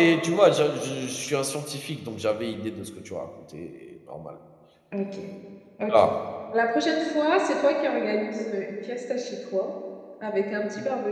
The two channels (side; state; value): both; identical; correlation 1.00